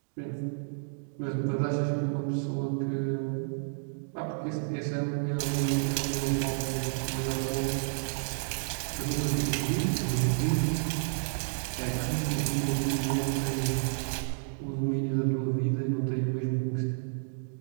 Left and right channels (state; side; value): silent; left; digital silence